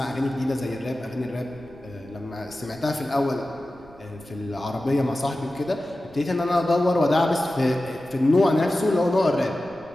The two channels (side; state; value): right; noise; rumble, 26 dB below the sound